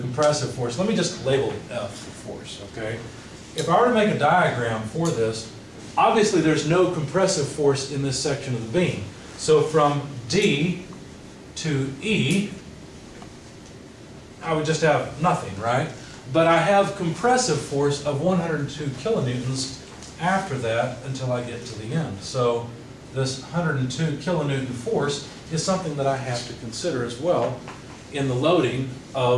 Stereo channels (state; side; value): identical; both; correlation 1.00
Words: force, let me just label it F for force, okay? If I were to make a diagram for this, obviously there's no compressive force in this section of the beam. So from D to E, I would just have nothing, right? But I have compressive force of 102 kilonewtons after that until I get to the end. So this 102 kilonewton force is something that I have to consider as well in the loading